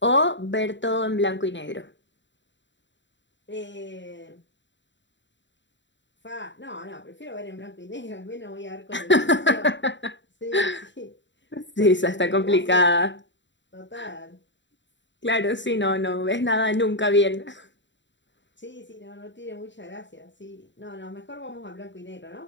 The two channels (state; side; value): late; right; 0.53 ms